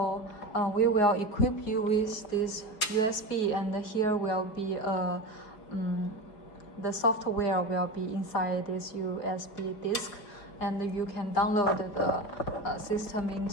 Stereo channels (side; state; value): right; late; 4.8 ms